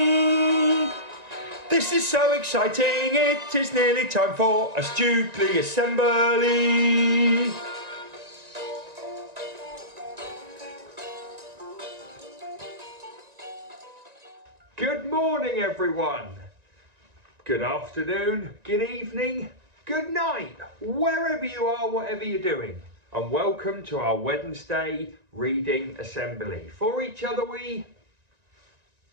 This is so exciting, it is nearly time for a Stukeley assembly. Good morning, everyone. Good afternoon, good evening, good night, wherever you are, whatever you're doing. And welcome to our Wednesday reading assembly. For each other we,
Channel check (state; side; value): late; left; 1.9 ms